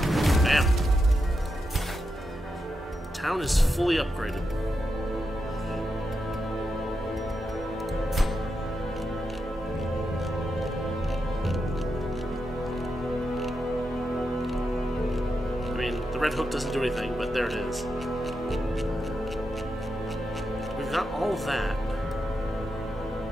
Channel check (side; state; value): both; normal; correlation 0.86